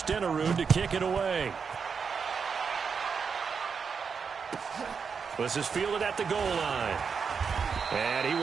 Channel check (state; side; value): quieter; left; 5.9 dB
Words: to kick it away. This is fielded at the goal line. And he